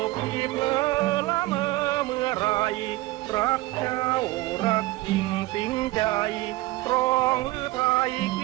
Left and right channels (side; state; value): left; quieter; 19.2 dB